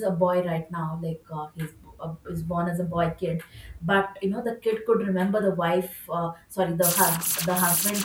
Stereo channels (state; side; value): identical; both; correlation 1.00